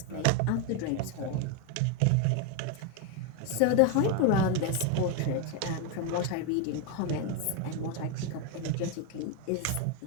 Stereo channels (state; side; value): different; both; correlation 0.02